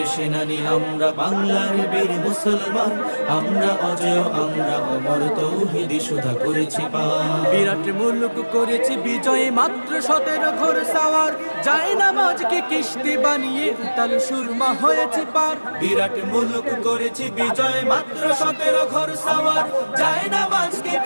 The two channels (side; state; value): both; inverted; correlation -1.00